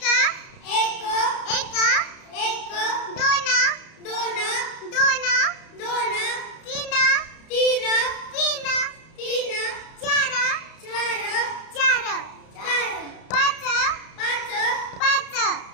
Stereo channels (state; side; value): late; right; 31 ms